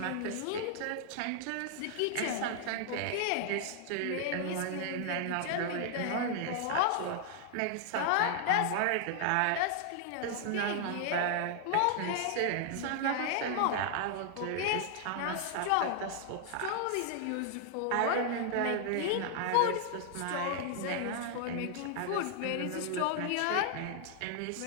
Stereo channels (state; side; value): different; both; correlation 0.00